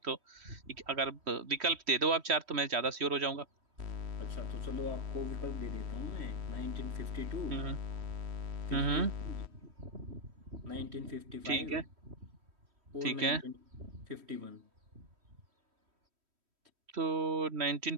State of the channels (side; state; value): left; late; 3.1 ms